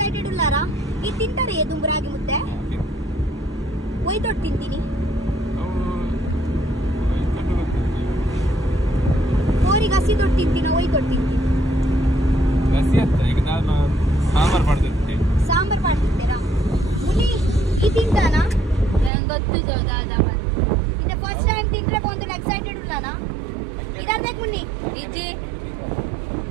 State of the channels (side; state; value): left; drops out; at 19.1 s